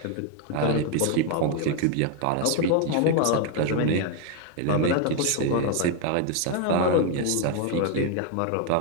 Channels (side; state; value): both; different; correlation 0.01